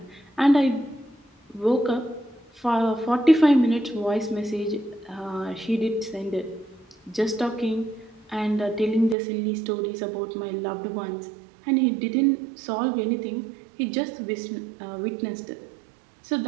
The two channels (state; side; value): drops out; left; at 9.2 s